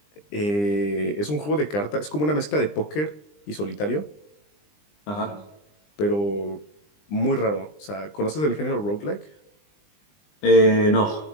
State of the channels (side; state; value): right; late; 20 ms